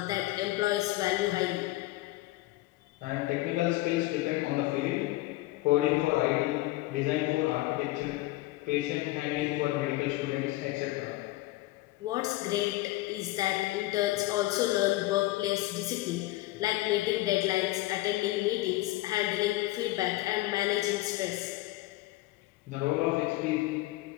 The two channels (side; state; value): right; quieter; 18.6 dB